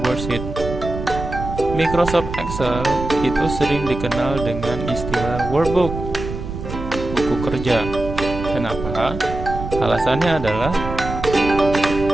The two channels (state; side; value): noise; right; rumble, 8 dB below the sound